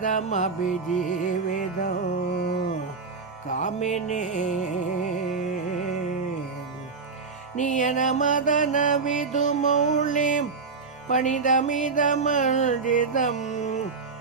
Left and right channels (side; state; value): left; quieter; 4.7 dB